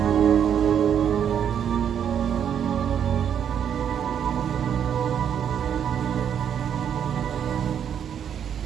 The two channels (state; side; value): quieter; left; 8.7 dB